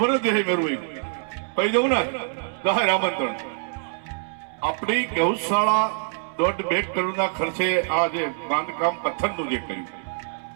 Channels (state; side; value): silent; left; 62 dB below the other